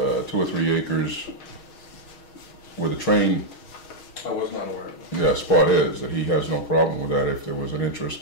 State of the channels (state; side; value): late; right; 6.3 ms